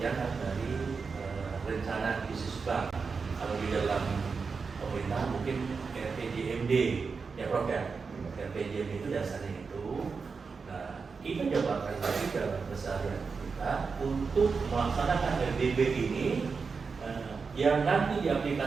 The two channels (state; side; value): quieter; left; 5.0 dB